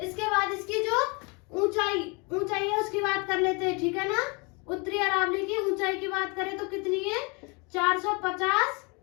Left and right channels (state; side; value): quieter; right; 30.9 dB